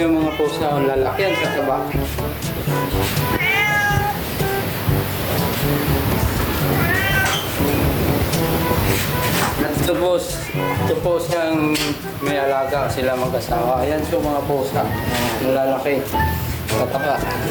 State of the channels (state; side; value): identical; both; correlation 1.00